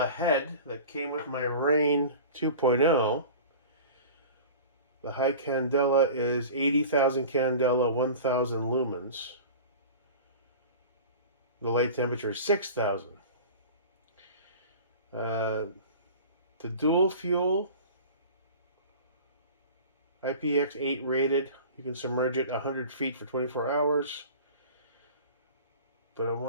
head that came with my Rain 2.0. The high candela is 80,000 candela, 1,000 lumens. The light temperature is 6,000. The dual fuel, IPX8 rated. You can submerge it 100 feet for 24 hours. But I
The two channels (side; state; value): both; inverted; correlation -0.38